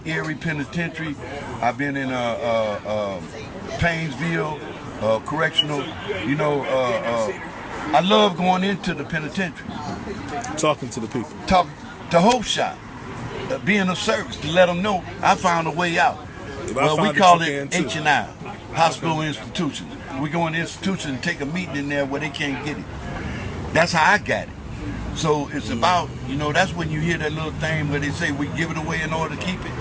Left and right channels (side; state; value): both; identical; correlation 1.00